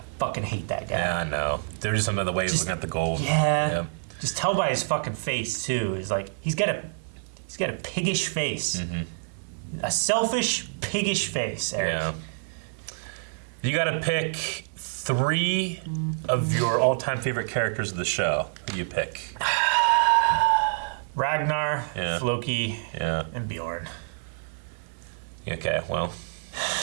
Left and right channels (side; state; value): left; silent; 60 dB below the other